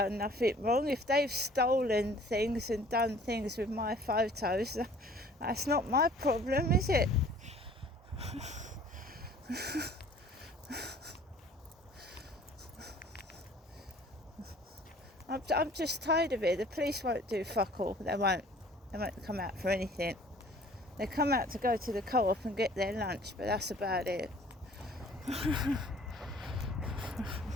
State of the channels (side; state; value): both; normal; correlation 0.52